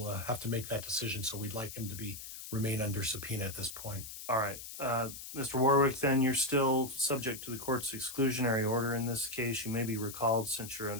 have to make that decision. So we'd like him to remain under subpoena at this point. All right. Mr. Warwick, then you're still subject to the court's exclusionary order in this case. You may be recalled since you're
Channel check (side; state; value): left; noise; hiss, 11 dB below the sound